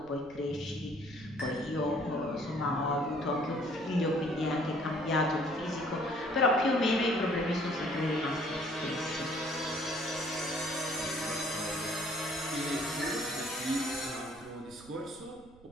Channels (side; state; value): right; noise; rumble, 24 dB below the sound